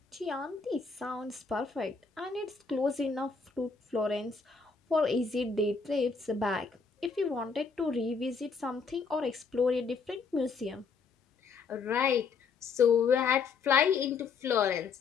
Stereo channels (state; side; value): quieter; right; 5.1 dB